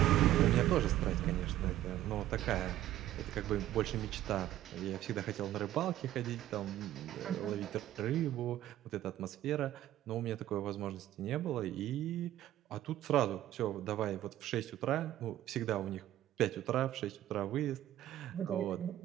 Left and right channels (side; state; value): left; quieter; 13.4 dB